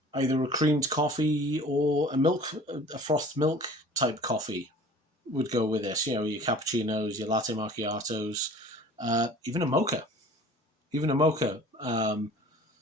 Either a creamed coffee or a frothed milk type coffee would go with this. You know, your cappuccinos, your latte macchiatos, even a mocha.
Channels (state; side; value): normal; both; correlation 0.46